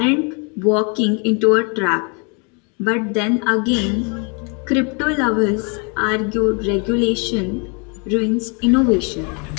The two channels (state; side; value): quieter; right; 35.2 dB